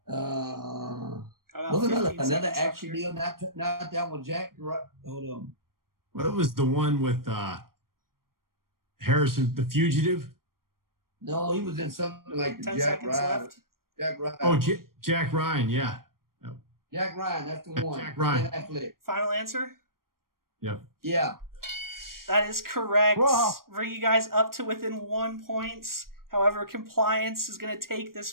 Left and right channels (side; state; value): left; late; 0.92 ms